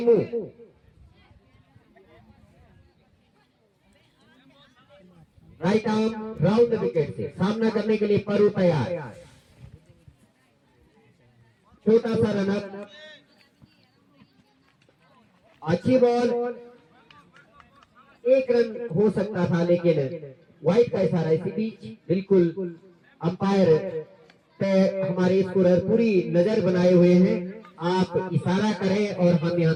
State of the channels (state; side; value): identical; both; correlation 1.00